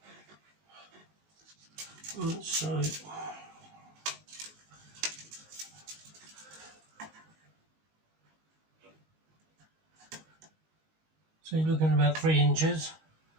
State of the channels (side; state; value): left; late; 19 ms